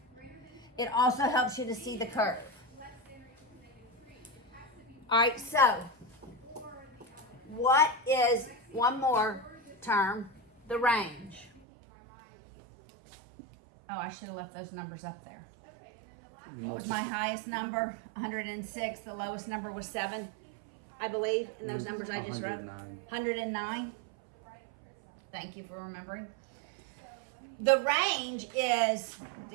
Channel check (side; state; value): left; drops out; at 11.6 s